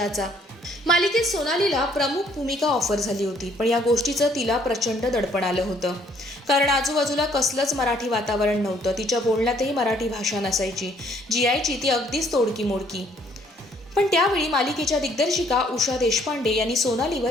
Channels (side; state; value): both; normal; correlation 0.64